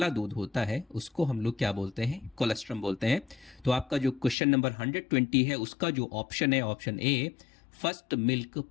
दूध होता है उसको हम लोग क्या बोलते हैं? कोलेस्ट्रम बोलते हैं। तो आपका जो क्वेश्चन नंबर 120 है उसका जो ऑप्शन है option A first milk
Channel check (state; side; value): drops out; right; at 4.4 s